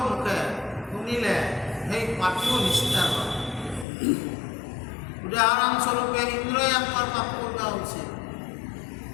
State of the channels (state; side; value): drops out; right; at 3.9 s